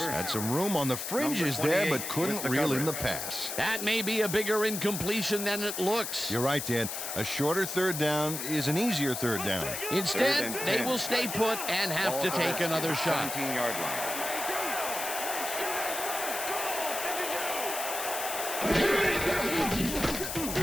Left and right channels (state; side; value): noise; left; hiss, 5 dB below the sound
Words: had some room on the fringes there, but couldn't reel in the pass. That may be a bigger incompletion than it looks. You're right, Dan. A shorter third down is an easier third down. Instead, they will stay put and have to take another shot. 17-yard line.